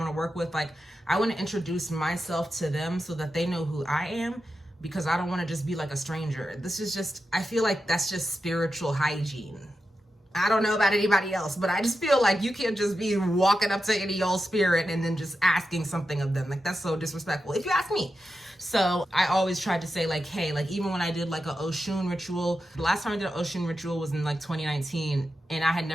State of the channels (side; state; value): both; normal; correlation 0.90